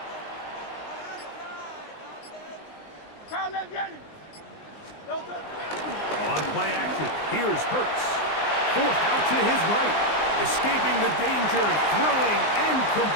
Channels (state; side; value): late; right; 19 ms